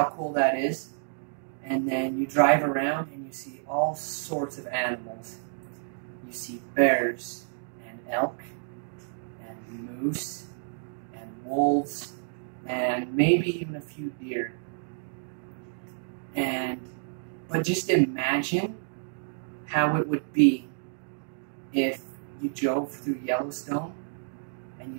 cool that is. And then you drive around and you see all sorts of animals. You see bears and elk and moose and wolves and maybe even a few deer. But just imagine how it would be if you drove through Yellowstone and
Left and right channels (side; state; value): left; silent; digital silence